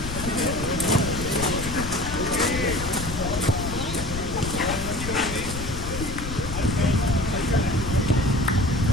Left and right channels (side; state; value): left; noise; rumble, 6 dB below the sound